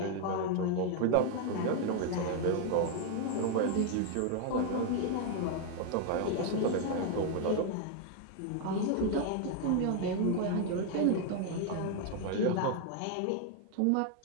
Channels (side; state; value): both; different; correlation 0.00